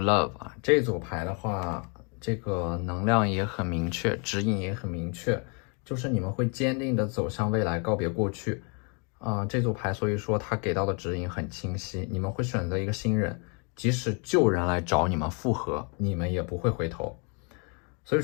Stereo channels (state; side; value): quieter; right; 35.7 dB